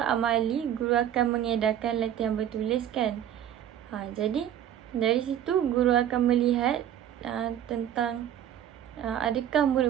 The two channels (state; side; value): quieter; left; 10.5 dB